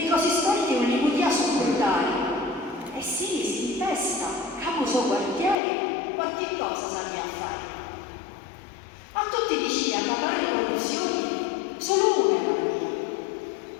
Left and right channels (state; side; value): drops out; right; at 5.6 s